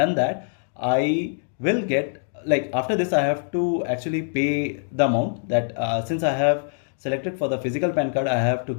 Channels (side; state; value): right; silent; digital silence